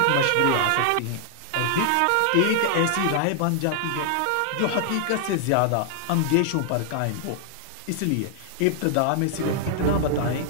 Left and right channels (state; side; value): different; both; correlation -0.01